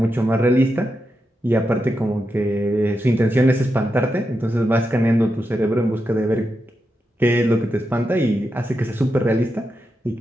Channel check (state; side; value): normal; both; correlation 0.87